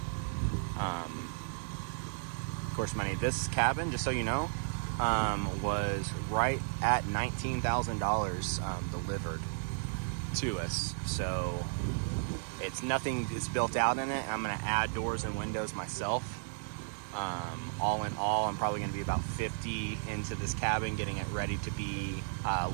of course, this cabin, just so you know, was right at $19,000 delivered to us. So it's nothing is built out in it. I'm going to add doors and windows myself. All in all, I'm probably going to be about 50 into this cabin, getting it ready to be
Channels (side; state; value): left; silent; digital silence